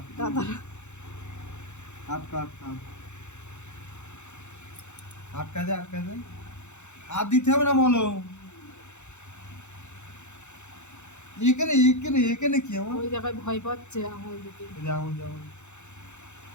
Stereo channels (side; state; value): right; late; 0.83 ms